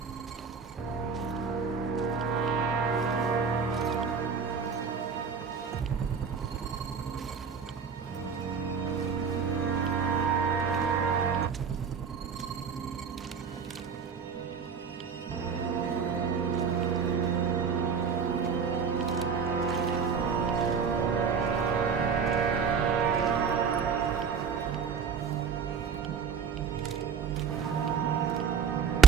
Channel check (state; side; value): quieter; left; 6.2 dB